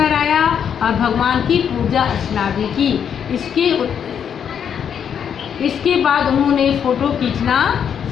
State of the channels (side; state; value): right; quieter; 8.1 dB